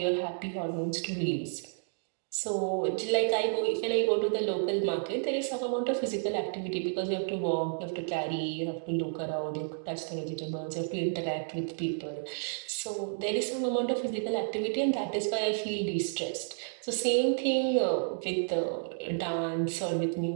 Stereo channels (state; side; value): silent; left; digital silence